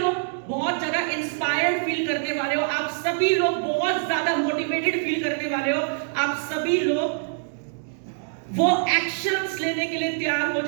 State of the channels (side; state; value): left; silent; digital silence